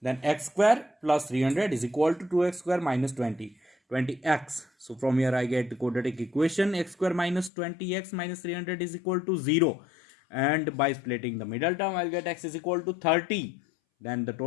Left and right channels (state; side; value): drops out; right; at 7.5 s